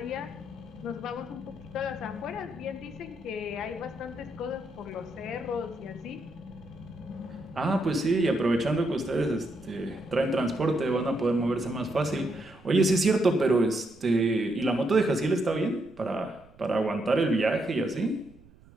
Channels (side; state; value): right; noise; rumble, 25 dB below the sound